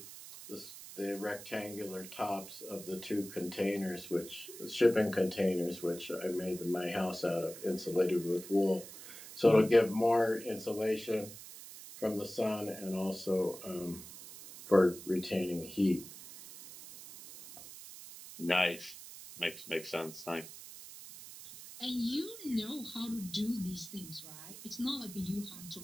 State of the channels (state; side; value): noise; right; hiss, 14 dB below the sound